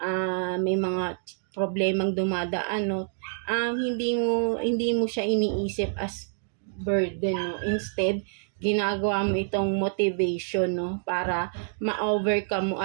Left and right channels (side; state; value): left; silent; digital silence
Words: may mga problemang dumadaan, no, hindi mo siya iniisip as burden, no, instead, ginagawa mo itong motivation, no, para ma-overcome mo